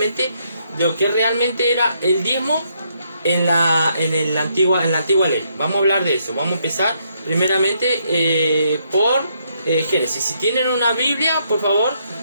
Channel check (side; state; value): both; inverted; correlation -0.74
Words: de lo que realmente era el diezmo en la antigua ley. Vamos a hablar de eso. Vamos a empezar primeramente por Génesis. Si tienen una Biblia, por favor,